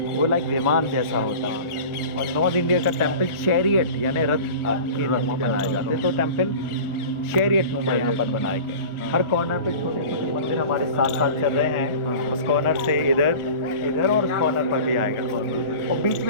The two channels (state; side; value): late; right; 1.4 ms